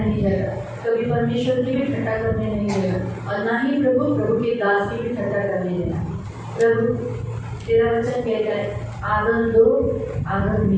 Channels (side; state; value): both; identical; correlation 1.00